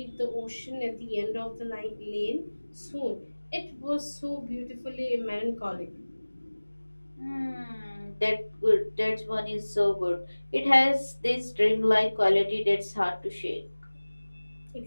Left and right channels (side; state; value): both; inverted; correlation -1.00